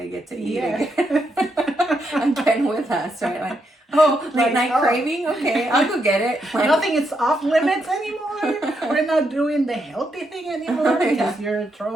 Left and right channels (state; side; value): normal; both; correlation 0.80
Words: get to eat again. Again with us, right? Like, oh, late night craving? Okay, I'll go get it. Like, nothing is off limits anymore. We're not doing the healthy thing anymore because you're